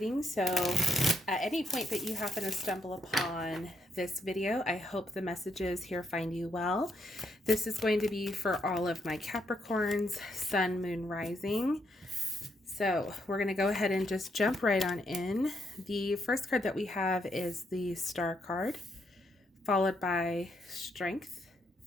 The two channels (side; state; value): both; normal; correlation 0.76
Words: So at any point that you happen to stumble upon this video, I hope the messages here find you well. This is going to be for all of my Capricorns, Sun, Moon, Rising. So we're going to go ahead and just jump right on in. The first card that we have is the Star card, followed by Strength